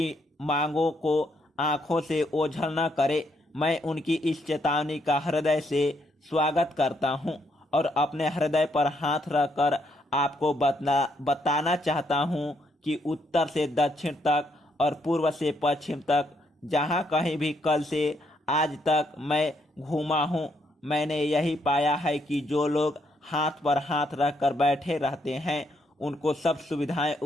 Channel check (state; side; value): normal; both; correlation 0.74